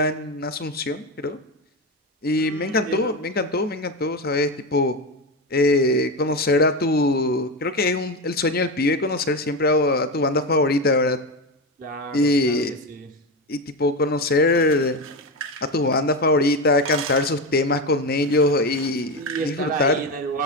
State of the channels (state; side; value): normal; both; correlation 0.16